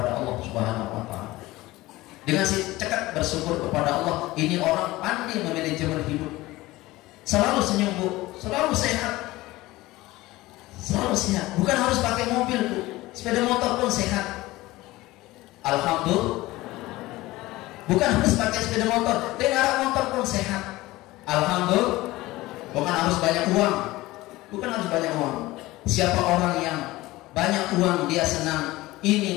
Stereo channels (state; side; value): quieter; right; 18.8 dB